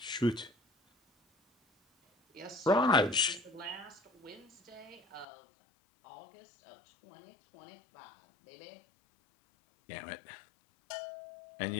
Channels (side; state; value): right; drops out; at 5.2 s